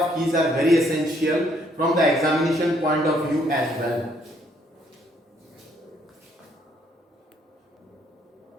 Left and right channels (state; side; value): normal; both; correlation 0.68